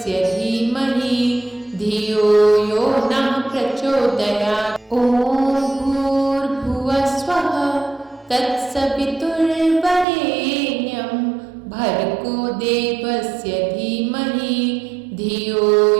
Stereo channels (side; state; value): left; drops out; at 10.1 s